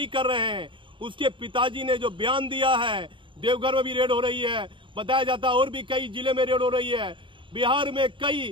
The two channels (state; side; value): late; left; 0.24 ms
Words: कर रहे हैं उसके पिताजी ने जो बयान दिया है, देवघर में भी रेड हो रही है, बताया जाता है और भी कई जिले में रेड हो रही है। बिहार में